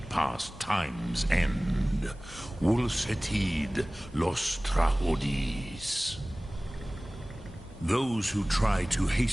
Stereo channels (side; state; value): both; normal; correlation 0.98